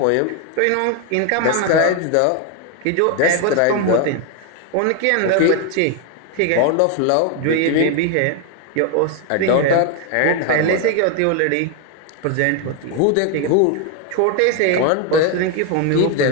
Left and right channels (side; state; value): both; different; correlation 0.01